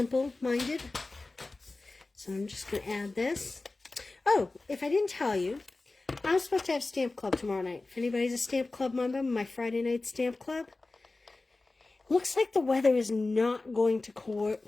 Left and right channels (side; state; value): right; quieter; 3.3 dB